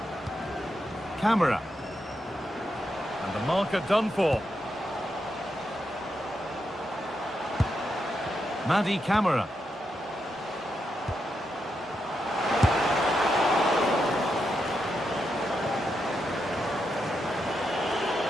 Camera. And the marker done for. Madi Camera.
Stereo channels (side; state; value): both; normal; correlation 0.84